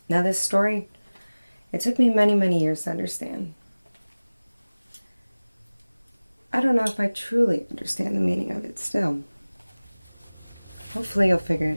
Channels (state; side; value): inverted; both; correlation -1.00